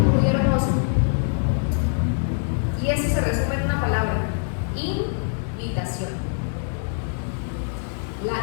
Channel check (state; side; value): silent; right; digital silence